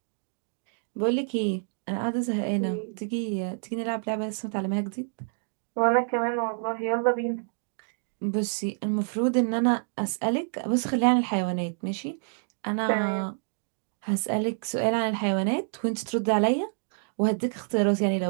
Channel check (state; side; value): silent; left; digital silence